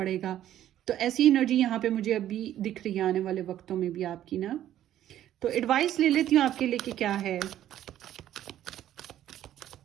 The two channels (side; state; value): left; quieter; 12.0 dB